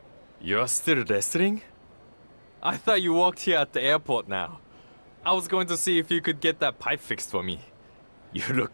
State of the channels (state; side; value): inverted; both; correlation -1.00